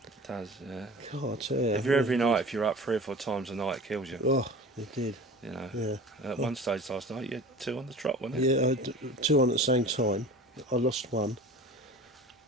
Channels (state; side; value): normal; both; correlation 0.39